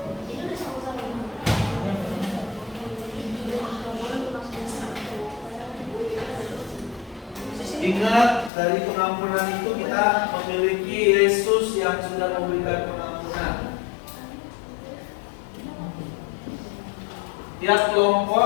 Ingat, dari pengampunan itu kita memiliki Yesus yang sudah memberikan pengampunan. Tiap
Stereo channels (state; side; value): drops out; right; at 8.5 s